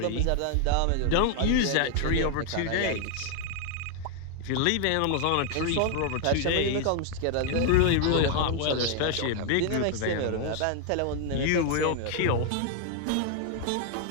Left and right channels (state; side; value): different; both; correlation 0.00